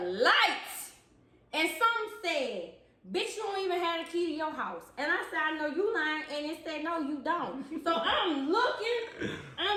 lights. And some said, bitch, you don't even have the key to your house. And I said, I know you lying. And it said, no, you don't. So I'm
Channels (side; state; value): both; identical; correlation 1.00